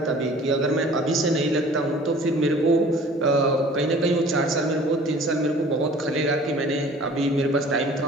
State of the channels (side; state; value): both; normal; correlation 0.48